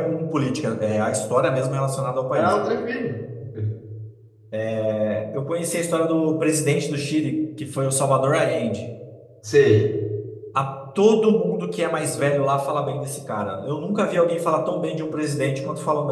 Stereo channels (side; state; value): both; identical; correlation 1.00